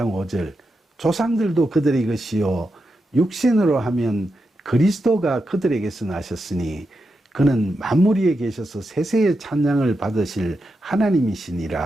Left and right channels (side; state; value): both; normal; correlation 0.87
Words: 5절 조상들도 그들의 것이요 육신으로 하면 그리스도가 그들에게서 나셨으니 그는 만물 위에 계셔서 세세의 찬양을 받으실